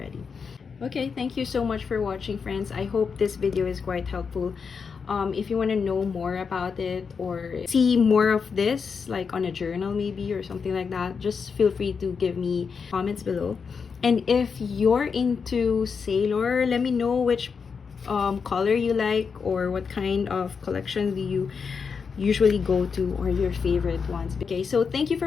Okay, thank you so much for watching, friends. I hope this video is quite helpful. If you want to know more about it or see more of this, like on a journal maybe or something like that, just feel free to give me comments below. And if you're into Sailor, let me know which color you like or what kind of collection do you usually go to or your favorite ones. Okay, so thank you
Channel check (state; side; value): quieter; right; 5.7 dB